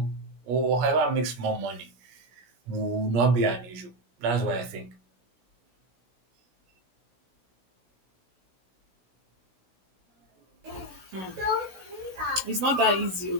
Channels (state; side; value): late; left; 16 ms